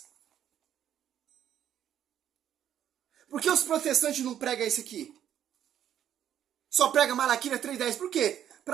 Por que os protestantes não pregam isso aqui? Só prega Malaquias 3:10. Por quê?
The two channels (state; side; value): quieter; left; 10.3 dB